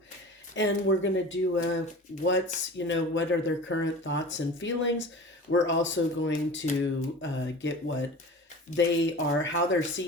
and we're going to do what are their current thoughts and feelings. We're also going to get what they are, how they're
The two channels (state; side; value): normal; both; correlation 0.37